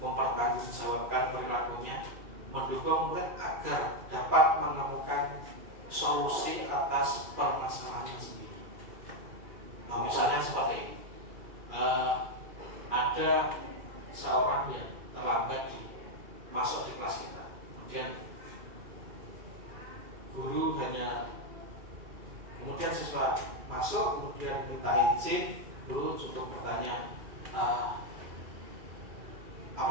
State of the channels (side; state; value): left; late; 2.4 ms